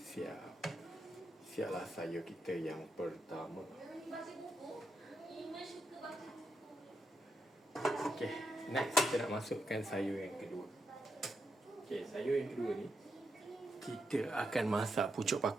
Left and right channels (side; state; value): both; normal; correlation 0.83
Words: Siaplah sayur kita yang pertama. Okey, next kita nak masukkan sayur yang kedua. Okey, sayur yang kedua ni kita akan masak pucuk